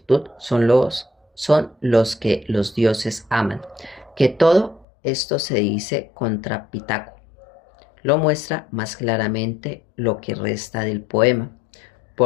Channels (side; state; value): right; drops out; at 4.9 s